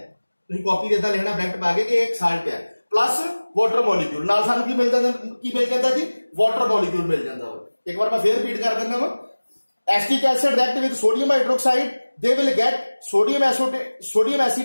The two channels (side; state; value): both; inverted; correlation -1.00